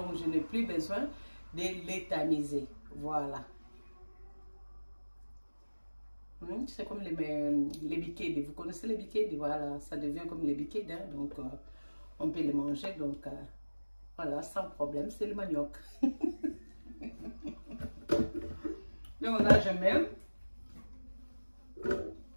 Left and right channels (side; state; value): both; inverted; correlation -1.00